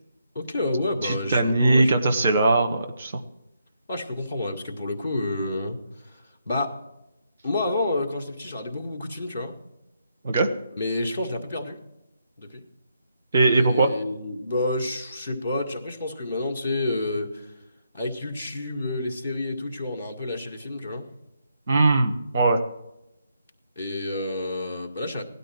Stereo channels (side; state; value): both; inverted; correlation -0.77